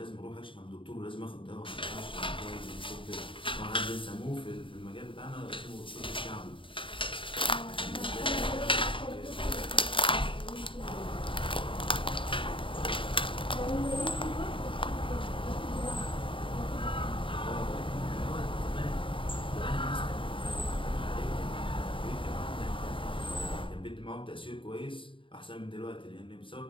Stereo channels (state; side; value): late; right; 0.25 ms